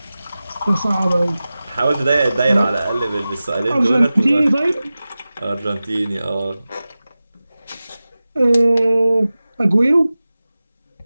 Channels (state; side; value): inverted; both; correlation -0.96